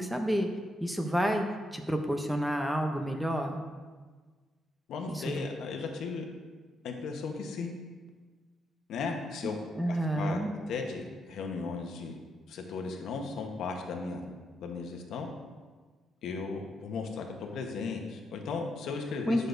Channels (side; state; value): both; normal; correlation 0.81